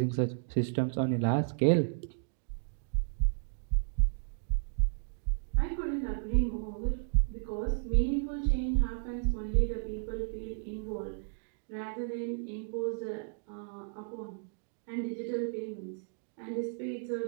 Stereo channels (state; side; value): silent; left; digital silence